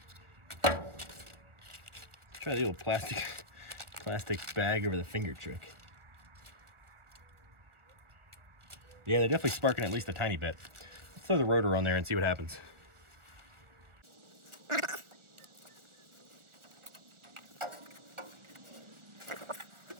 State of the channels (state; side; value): late; left; 1.4 ms